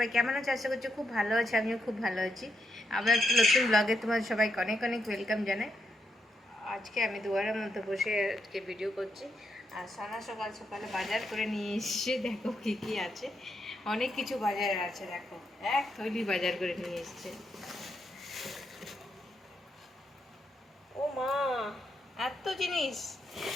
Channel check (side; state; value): both; normal; correlation 0.81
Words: কেমন আছো? আশা করছি খুব ভালো আছে। আমিও খুব ভালো আছি। আবার একটা নতুন ব্লগে তোমার সবাইকে অনেক অনেক ওয়েলকাম জানাই। আজকে আমি দুয়ারের মধ্যে বসে আজকে ভিডিও করছি। আর সানা সকাল সকালে বাজার করে নিয়ে এসছে। দেখো কী কী আছে, অনেক কিছু বাজারে আছে। দেখো, এক থলি বাজার করে নিয়ে এসছে। ও মা, এত জিনিস!